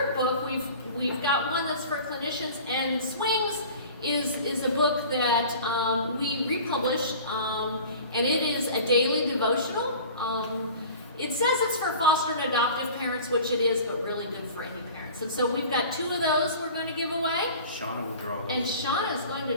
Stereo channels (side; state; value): both; inverted; correlation -0.41